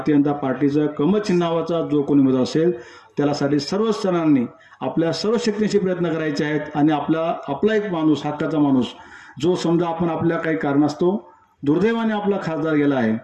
जनता पार्टीचा कमळ चिन्हावाचा जो कोणी उमेदवार असेल त्यासाठी सर्वच जणांनी आपल्या सर्व शक्तीनिशी प्रयत्न करायचे आहेत. आणि आपला एक माणूस, हक्काचा माणूस, जो समजा आपण आपल्या काही कारणास्तव दुर्दैवाने आपला खासदार गेला आहे,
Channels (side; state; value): both; identical; correlation 1.00